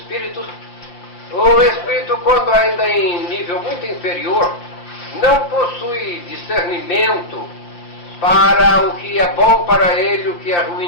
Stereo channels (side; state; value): right; late; 5.8 ms